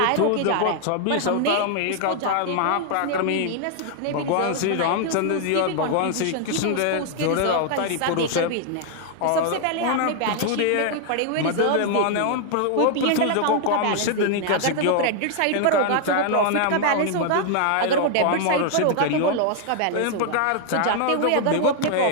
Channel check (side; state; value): both; different; correlation 0.00